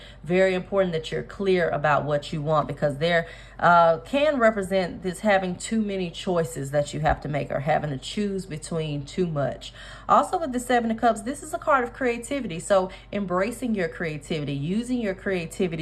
very important that you're clear about what you want, because there can represent this having too many choices that you have to make, or having to choose between too much. Also with the Seven of Cups, this is a card of creativity. So embracing your creativity, using your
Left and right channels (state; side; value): identical; both; correlation 1.00